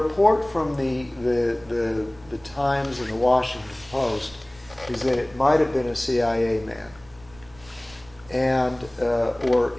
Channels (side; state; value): right; noise; rumble, 24 dB below the sound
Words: from the Times and the Washington Post is that it might have been a CIA man and or